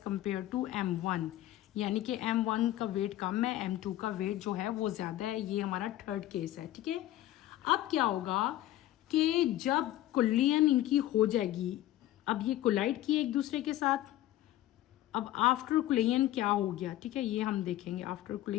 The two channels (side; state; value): right; quieter; 14.3 dB